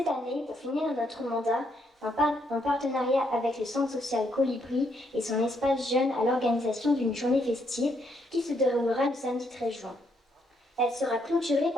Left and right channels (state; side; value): normal; both; correlation 0.74